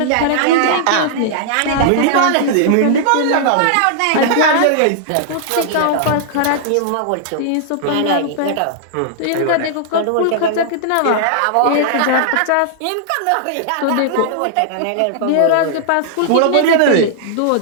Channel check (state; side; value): different; both; correlation -0.01